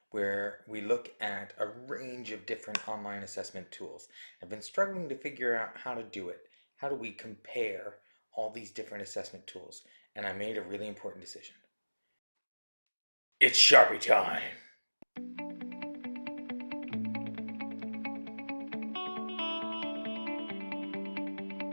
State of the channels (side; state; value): both; inverted; correlation -1.00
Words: where we look at a range of different online assessment tools. I've been struggling to figure out how to do it. How do we compare all these different assessment tools? And I made a really important decision. It's Sharpie time!